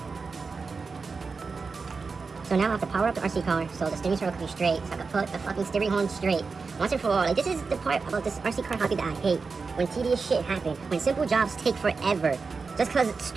So now I have to power up the RC car so the steering circle can be straight, so I can put the fucking steering horn straight once and for all. Like, this is the part about this RC car hobby that I hate. When tedious shit happens, when simple jobs take forever, just cause it's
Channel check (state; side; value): quieter; left; 4.6 dB